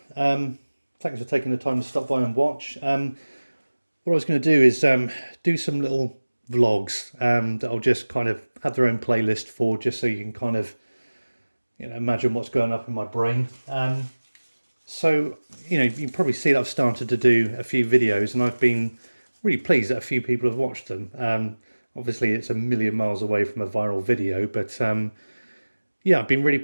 Thanks for taking the time to stop by and watch. What I was going to do is do some little vlogs that I'll just kind of have their own playlist for, just so you can kind of imagine what's going up in my brain. So you can probably see that I've started to do a few videos, and I've been really pleased that a few people have watched them. Obviously, it's a million miles away from a viral video, but yeah, I've been really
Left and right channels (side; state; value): both; inverted; correlation -1.00